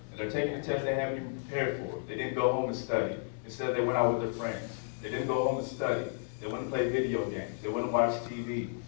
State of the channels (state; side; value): silent; right; digital silence